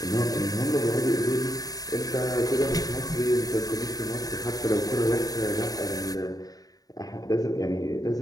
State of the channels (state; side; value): late; right; 0.18 ms